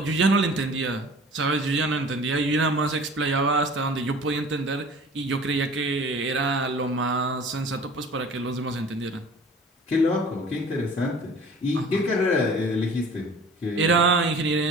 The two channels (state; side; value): normal; both; correlation 0.45